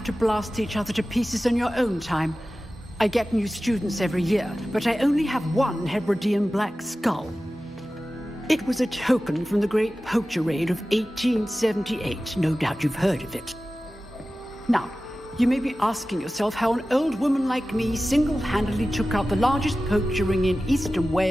to blast each other to pieces on your own time. I get new students every year, but I only have one Hebridean black skull. It was a token from the Great Poacher Raid of 1878. No doubt you've heard of it. Now, you may be asking yourself how an old woman like me single-handedly took out the largest poacher ring in eastern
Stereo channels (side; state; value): both; normal; correlation 0.95